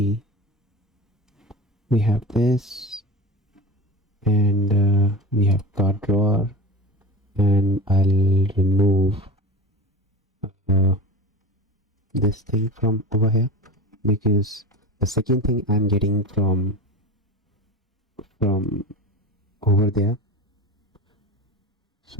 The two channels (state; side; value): normal; both; correlation 0.31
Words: we have this and we have card drawer, and I'll remove this thing from over here because the second thing I'm getting from over there.